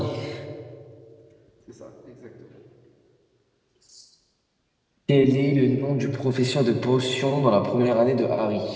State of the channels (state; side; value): identical; both; correlation 1.00